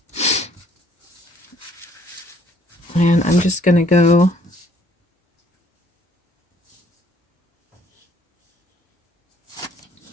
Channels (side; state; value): both; normal; correlation 0.62